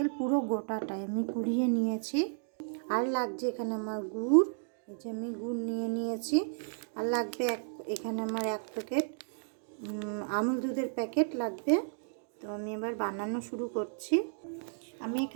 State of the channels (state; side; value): silent; left; digital silence